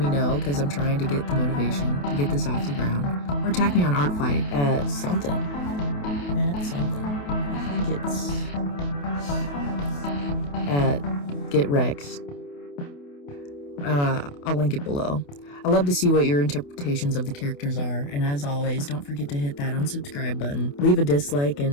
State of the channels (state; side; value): late; right; 28 ms